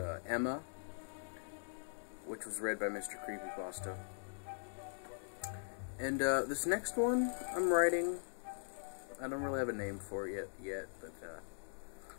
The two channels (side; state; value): right; silent; digital silence